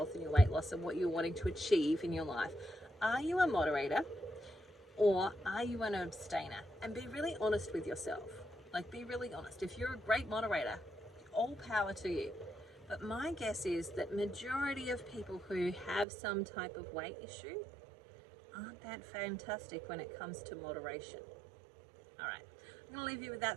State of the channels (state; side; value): drops out; left; at 16.1 s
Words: and your weight loss and what you're wanting to achieve in your life. Are you a moderator or are you an abstainer? And be really honest with yourself. Like, be really honest. If you're a great moderator, all power to you. But my guess is that majority of people who have some type of weight issue aren't that fantastic when it comes to moderation. All right. I'm going to leave you with